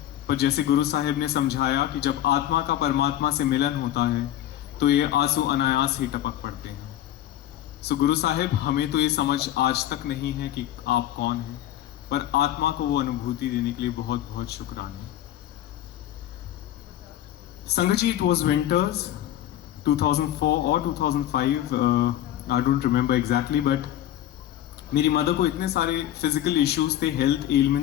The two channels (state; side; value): quieter; right; 12.4 dB